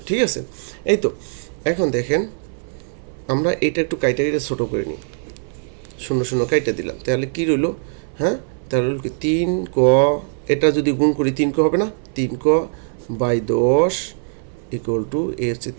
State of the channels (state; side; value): silent; left; 61 dB below the other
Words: ঠিক আছে। এই তো এখন দেখেন আমরা এটা একটু কাইটা ছোটো করে নিই, 0 কাইটা দিলাম, তাহলে কী রইল, হ্যাঁ। তাহলে রইল কি 3ক, এটা যদি গুণ করি 3ক হবে না, 3ক/10 ইকুয়াল টু এ হচ্ছে